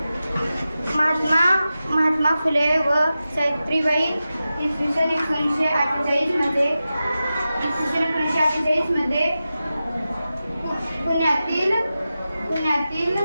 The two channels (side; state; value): both; inverted; correlation -0.93